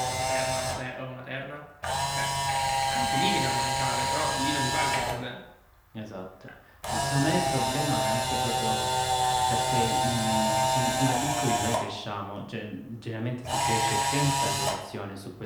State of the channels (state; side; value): identical; both; correlation 1.00